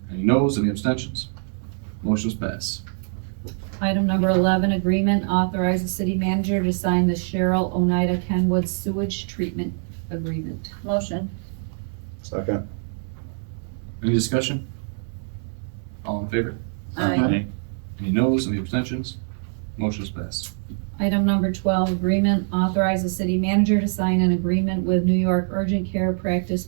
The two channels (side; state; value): left; silent; 63 dB below the other